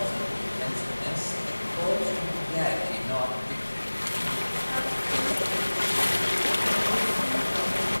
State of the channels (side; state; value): both; inverted; correlation -1.00